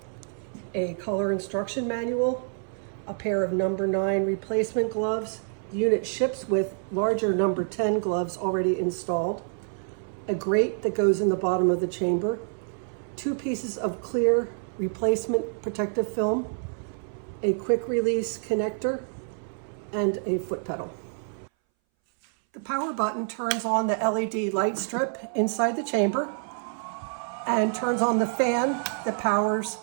a color instruction manual, a pair of number 9 replacement gloves. The unit ships with larger number 10 gloves already installed, a grate that goes in the bottom of the chamber, 2 pieces of clear replacement protective film, a quick release connector, and a foot pedal. The power button turns on the LED light strip inside the chamber and turns on the fan that powers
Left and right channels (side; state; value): left; silent; 60 dB below the other